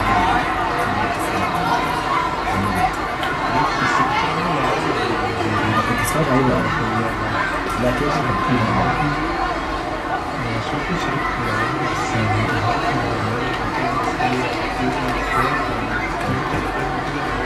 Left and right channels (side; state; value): both; identical; correlation 1.00